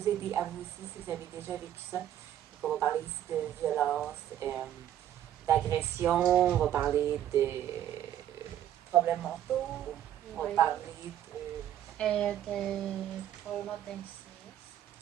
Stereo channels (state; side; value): quieter; left; 11.3 dB